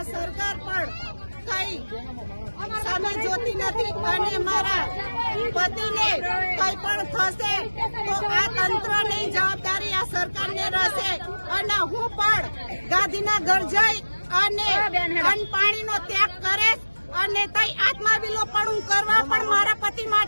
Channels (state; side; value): inverted; both; correlation -1.00